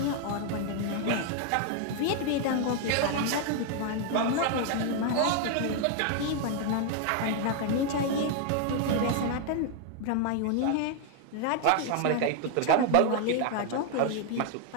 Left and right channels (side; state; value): both; different; correlation 0.00